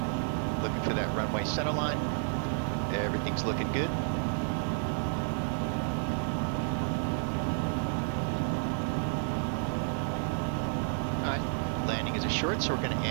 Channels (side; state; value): left; silent; 57 dB below the other